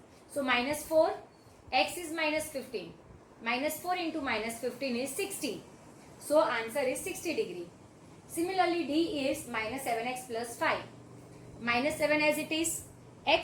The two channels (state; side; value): identical; both; correlation 1.00